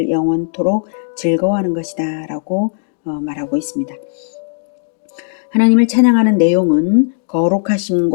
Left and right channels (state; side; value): silent; right; digital silence